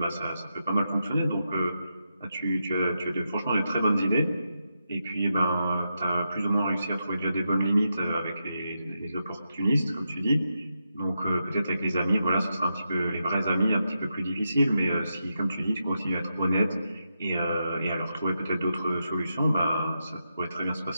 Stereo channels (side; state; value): both; inverted; correlation -0.86